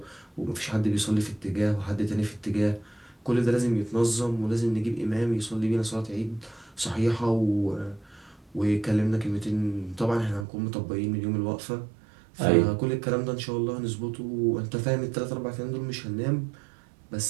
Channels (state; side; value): drops out; left; at 10.5 s